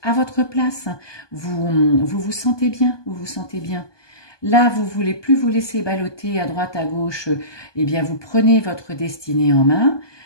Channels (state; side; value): late; right; 1.2 ms